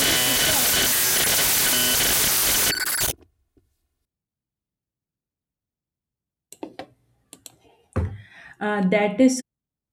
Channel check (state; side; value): identical; both; correlation 1.00